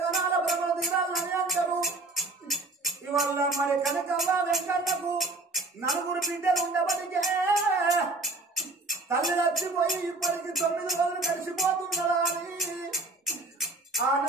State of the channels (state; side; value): quieter; left; 3.1 dB